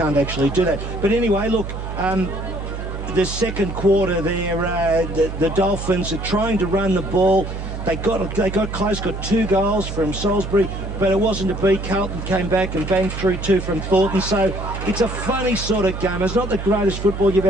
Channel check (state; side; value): noise; right; hum, 7 dB below the sound